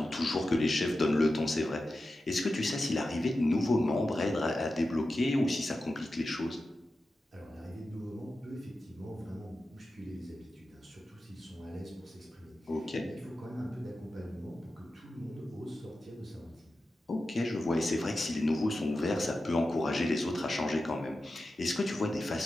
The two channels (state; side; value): normal; both; correlation 0.92